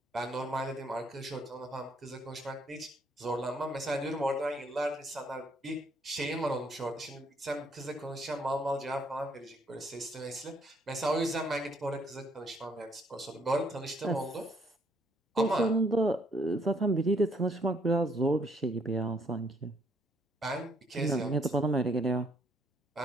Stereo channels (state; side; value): normal; both; correlation 0.68